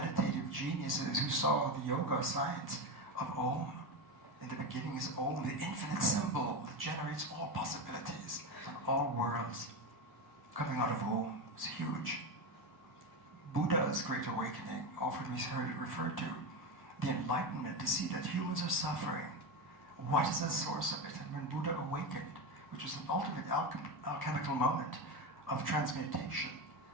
geniuses who saw the yoga science of Om, in the beginning is Om, the infinite symbol that generates all possibilities and all worlds. Coming out of Om is huge. Buddha's great awakening, often we heard it referred to, the enlightenment, to see that humans are suffering. What is the source of it? And when Buddha awakened, which was an ultimate alchemical moment of transmutation,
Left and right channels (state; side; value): late; right; 1.1 ms